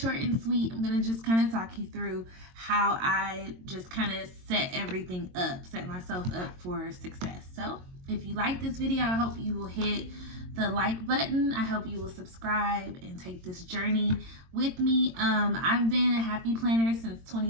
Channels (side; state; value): left; late; 22 ms